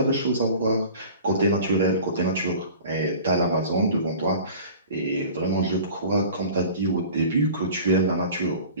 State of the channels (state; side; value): inverted; both; correlation -0.42